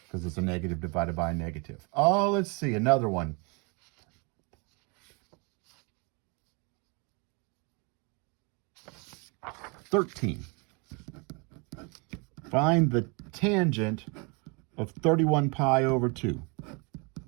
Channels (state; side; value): quieter; left; 32.1 dB